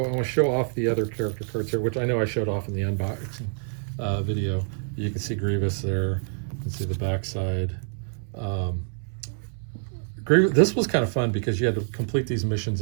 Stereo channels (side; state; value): left; silent; 61 dB below the other